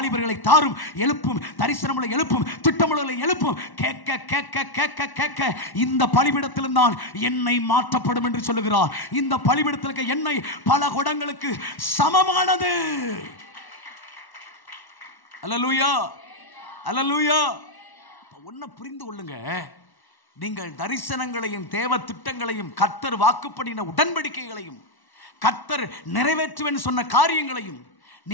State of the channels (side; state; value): right; late; 1.1 ms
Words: தாரும், எழுப்பும், தரிசனங்களை எழுப்பும், திட்டங்களை எழுப்பும். கேட்க கேட்க கேட்க கேட்க இந்த பலிபீடத்திலும் தான் எண்ணெய் மாற்றப்படும் என்று சொல்லுகிறார். இந்த பலிபீடத்தில் இருக்க எண்ணெய் பல குடங்களுக்கு சமமானது. அல்லேலூயா. அல்லேலூயா. ஒன்ன புரிந்து கொள்ளுங்க, நீங்கள் தரிசனங்களையும் தேவ திட்டங்களையும் கர்த்தர் வாக்குப்படின உடன்படிக்கைகளையும் கர்த்தர் நிறைவேற்றுவேன் சொன்ன காரியங்களையும்